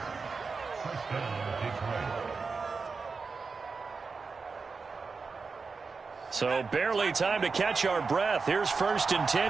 So barely time to catch our breath. Here's 1st and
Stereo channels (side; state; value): left; quieter; 4.7 dB